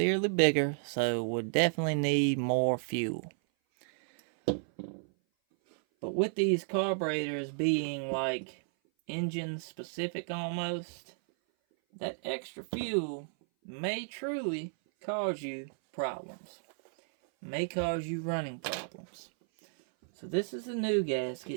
bigger, so would definitely need more fuel. But with these carburetors being like engine specific almost, that extra fuel may truly cause you problems. May cause you running problems. So this is the new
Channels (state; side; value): silent; left; 56 dB below the other